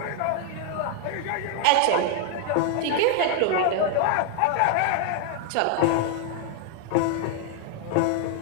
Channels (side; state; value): both; different; correlation 0.00